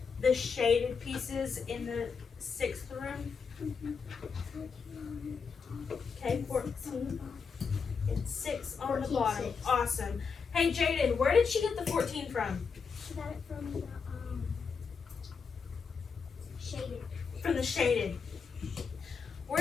the shaded pieces in the 6th room? Okay, 14. And 6 on the 14, bottom. 6. Awesome. Hey, Jaden, where did she get the 14 from? She got it from the shaded. From the shaded.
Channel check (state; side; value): quieter; right; 5.6 dB